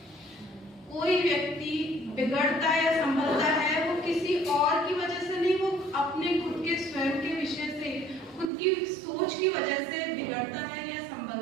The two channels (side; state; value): left; drops out; at 8.5 s